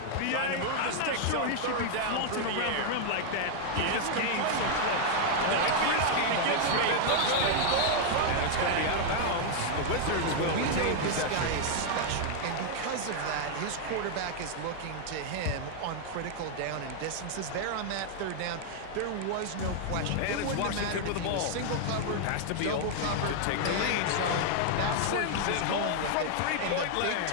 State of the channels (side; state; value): both; different; correlation 0.00